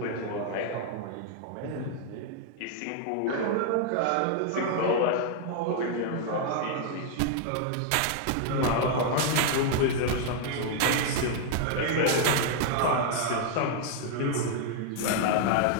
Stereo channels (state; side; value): different; both; correlation 0.00